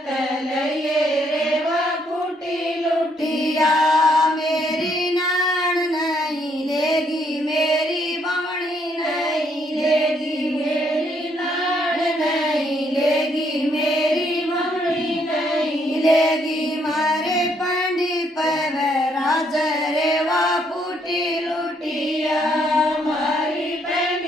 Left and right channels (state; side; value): normal; both; correlation 0.71